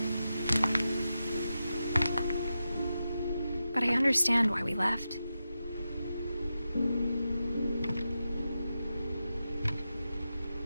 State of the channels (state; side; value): inverted; both; correlation -0.90